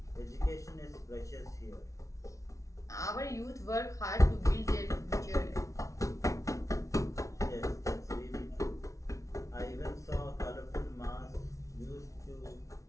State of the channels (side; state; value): right; late; 0.15 ms